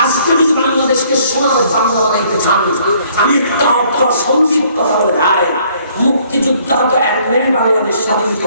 আজকে যদি বাংলাদেশকে সোনার বাংলা বানাইতে চান, আমি একটা সঙ্গীত কথা বলে ভাই, মুক্তিযোদ্ধারা তো একদিন বাংলাদেশ স্বাধীন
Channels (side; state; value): both; inverted; correlation -0.62